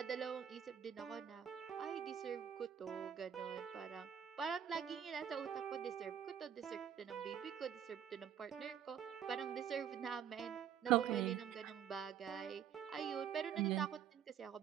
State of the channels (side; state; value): left; quieter; 8.9 dB